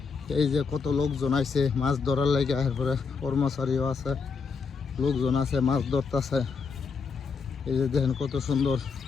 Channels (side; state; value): right; quieter; 5.3 dB